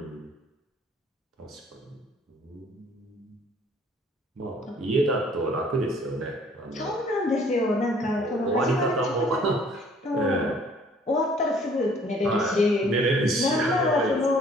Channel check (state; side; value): normal; both; correlation 0.57